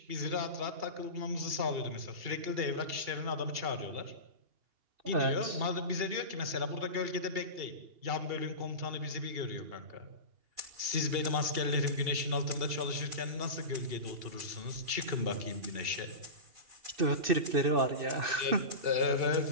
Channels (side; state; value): left; late; 2.8 ms